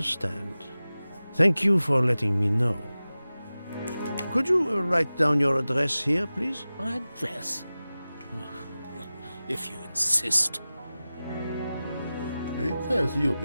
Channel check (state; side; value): inverted; both; correlation -0.96